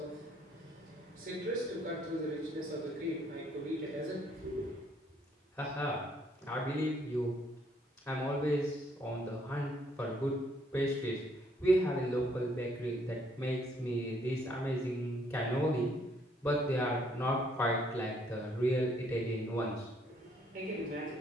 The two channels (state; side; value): normal; both; correlation 0.67